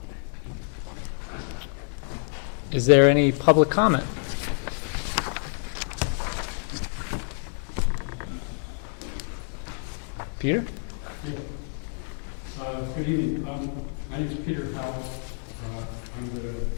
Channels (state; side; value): silent; right; 58 dB below the other